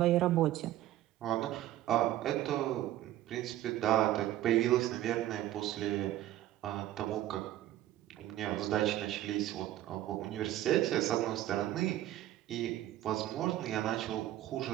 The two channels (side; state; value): left; quieter; 14.0 dB